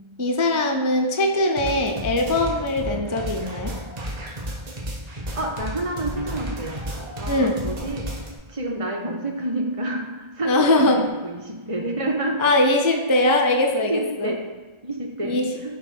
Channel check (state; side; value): late; left; 1.3 ms